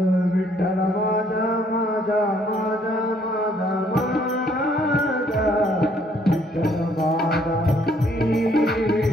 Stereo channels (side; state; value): both; normal; correlation 0.65